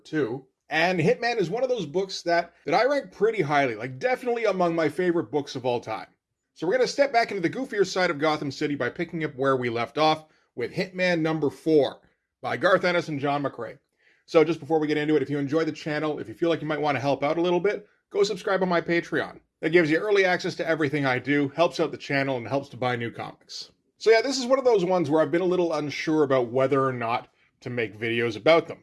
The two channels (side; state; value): both; identical; correlation 1.00